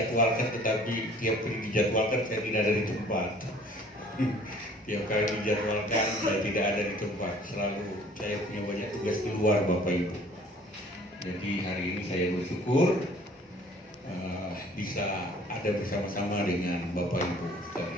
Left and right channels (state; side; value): normal; both; correlation 0.53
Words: tetapi tiap kali dijadwalkan saya tidak ada di tempat. Tiap kali dijadwalkan saya tidak ada di tempat. Selalu saya punya banyak tugas keluar Bapak Ibu. Jadi hari ini saya bersyukur bisa ada bersama-sama dengan Bapak Ibu